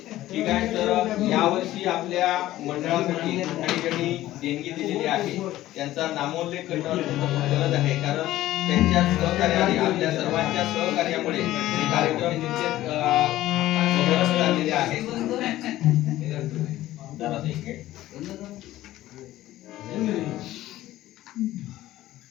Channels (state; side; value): quieter; right; 15.0 dB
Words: ठीक आहे. तर यावर्षी आपल्या मंडळासाठी काही ज्यांनी देणगी दिलेली आहे त्यांचा नामोल्लेख करणं गरज आहे, कारण त्यांच्या सहकार्याने आपल्या सर्वांच्या सहकार्यामुळे हे कार्यक्रम निश्चित झालेले आहेत.